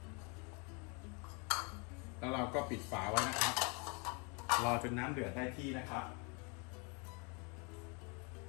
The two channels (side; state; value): right; quieter; 33.0 dB